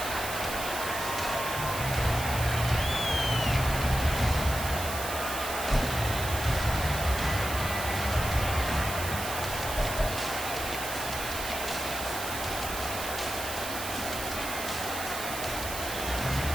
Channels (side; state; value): right; noise; hiss, 7 dB below the sound